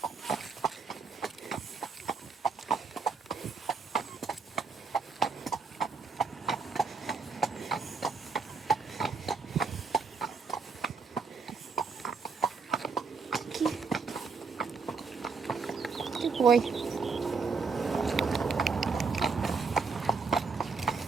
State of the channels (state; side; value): quieter; left; 4.9 dB